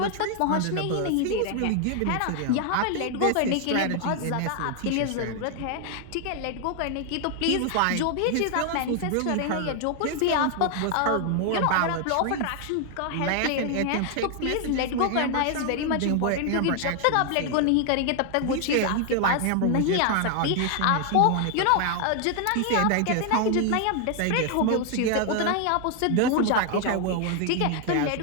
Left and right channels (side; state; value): both; different; correlation 0.00